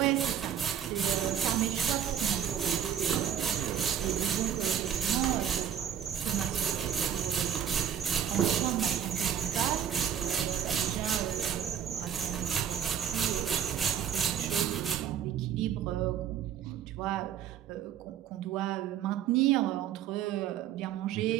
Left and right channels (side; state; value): left; quieter; 9.2 dB